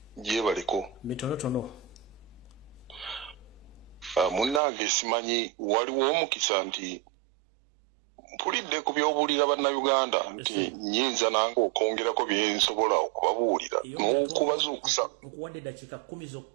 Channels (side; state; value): left; drops out; at 4.6 s